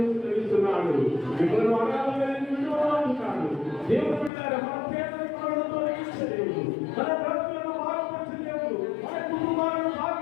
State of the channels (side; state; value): right; drops out; at 4.3 s